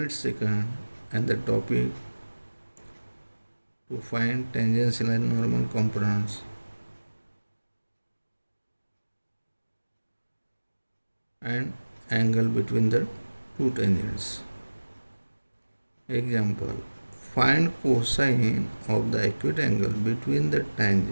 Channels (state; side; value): inverted; both; correlation -1.00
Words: second, and the topic to find tangential and normal components and angle between the two tangents. Example: find cosine of the acute angle between the